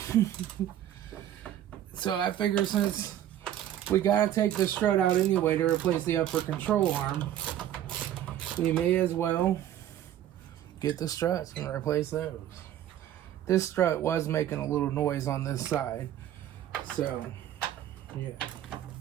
So I figure since we got to take the strut out anyway to replace the upper control arm, we may as well get the struts and replace those. This strut was making a little noise on this side. So, yeah.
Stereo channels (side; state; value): left; quieter; 11.6 dB